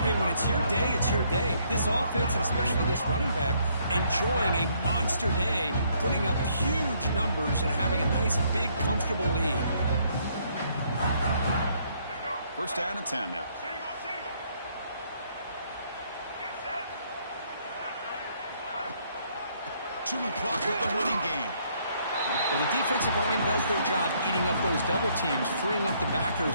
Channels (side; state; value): both; inverted; correlation -0.68